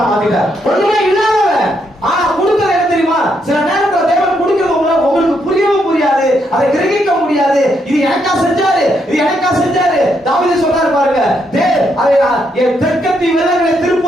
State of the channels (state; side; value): normal; both; correlation 0.77